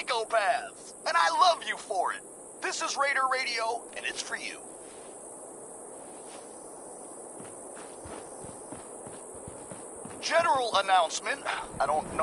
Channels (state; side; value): identical; both; correlation 1.00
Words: and I love you for it. This is Raider Radio, and it's for you. General announcement. I don't